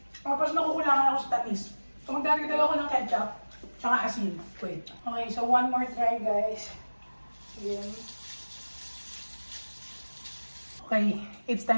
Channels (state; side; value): inverted; both; correlation -1.00